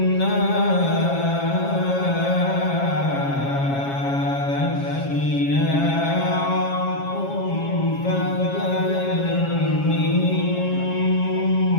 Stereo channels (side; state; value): right; late; 7.3 ms